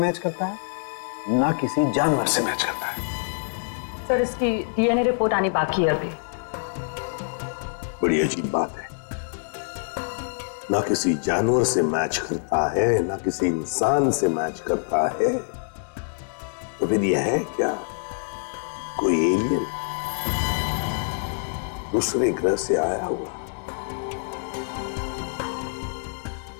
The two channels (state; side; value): silent; right; digital silence